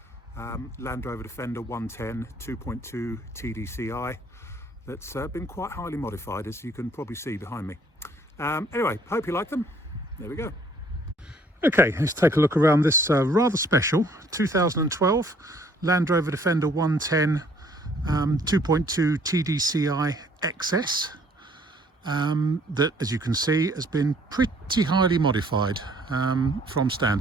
Land Rover Defender 110 2.2 TDCi that's been quite highly modified, as you can probably see behind me. Anyway, hope you like them. There we go. Okay, let's take a look around this rather special 2012 Land Rover Defender 110 2.2 TDCi XS that, as you can see, has been pretty highly modified from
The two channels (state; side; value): normal; both; correlation 0.60